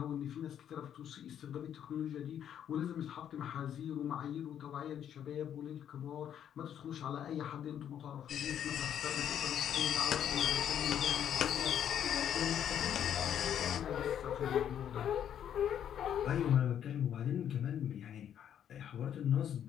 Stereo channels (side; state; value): right; quieter; 9.6 dB